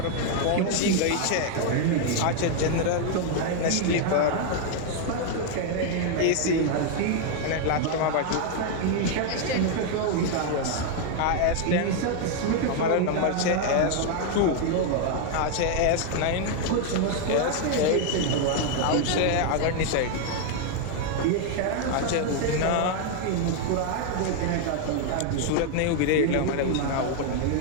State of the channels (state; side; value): different; both; correlation 0.00